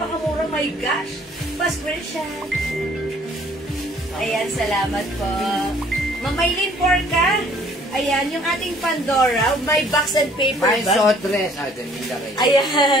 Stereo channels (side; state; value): both; normal; correlation 0.57